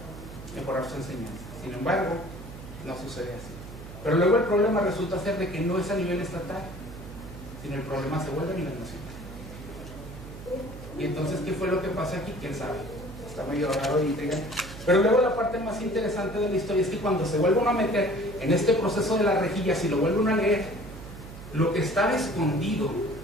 mejorar su enseñanza. Sin embargo, no sucede así. Pero luego el problema resulta ser de que no es a nivel estatal, sino el problema se vuelve a nivel nacional. Y entonces, ¿qué fue lo que pasa aquí? ¿Quién sabe? Está medio raro y intrigante. Pero luego la parte más interesante de la historia es que cuando se vuelve uno a meter en este proceso de las rejillas y lo vuelve uno a leer, lo que estaba escondido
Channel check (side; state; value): right; noise; hum, 13 dB below the sound